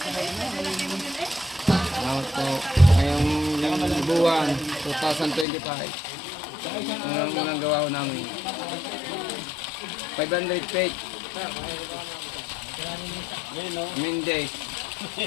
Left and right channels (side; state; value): right; drops out; at 5.5 s